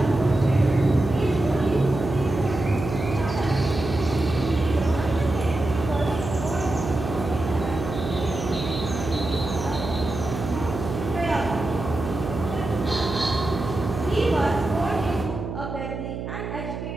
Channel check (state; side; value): noise; right; hum, 7 dB below the sound